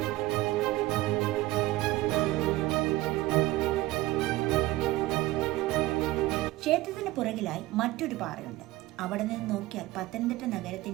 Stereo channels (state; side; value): quieter; left; 18.0 dB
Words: ക്ഷേത്രത്തിന് പുറകിലായി മറ്റൊരു പാറയുണ്ട്. അവിടെ നിന്ന് നോക്കിയാൽ പത്തനംതിട്ട